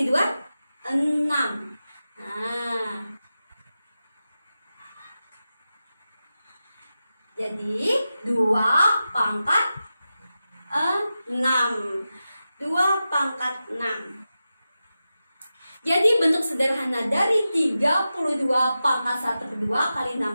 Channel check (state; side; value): inverted; both; correlation -0.92